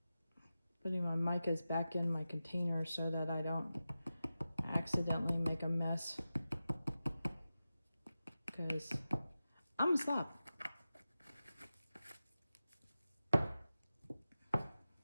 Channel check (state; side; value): inverted; both; correlation -0.94